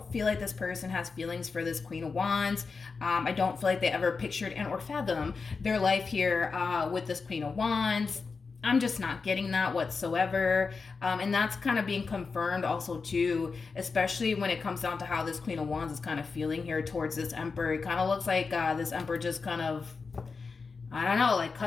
feel like this person has feelings for this Queen of Wands. I don't feel like they ever pictured and or fathomed their life here with this Queen of Wands. I'm just not getting that whatsoever. And that's kind of being confirmed also too, especially when it comes down to how this Queen of Wands is kind of feeling here towards this Emperor. It kind of looks like this Emperor just kind of, I don't know, like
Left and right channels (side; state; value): right; quieter; 4.7 dB